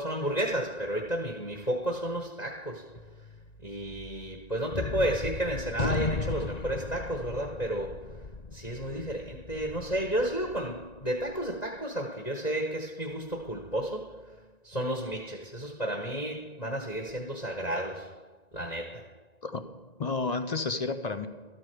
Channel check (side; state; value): right; late; 1.9 ms